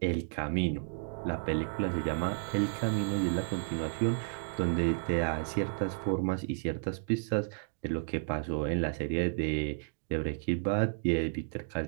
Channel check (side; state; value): left; silent; digital silence